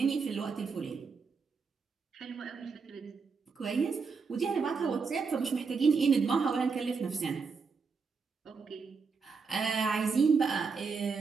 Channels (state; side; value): quieter; left; 5.1 dB